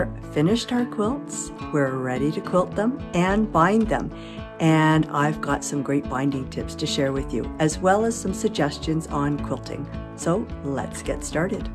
finished our quilts, we're ready to quilt them and bind them. And I've got some great binding tips to share with you, as well as some suggestions on quilting. So let's get started.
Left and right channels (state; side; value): identical; both; correlation 1.00